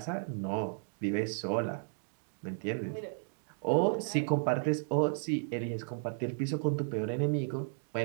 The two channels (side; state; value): left; silent; digital silence